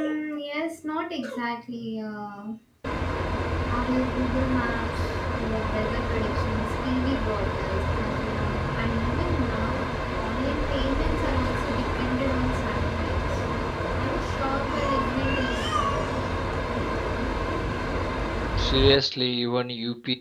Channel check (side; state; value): both; identical; correlation 1.00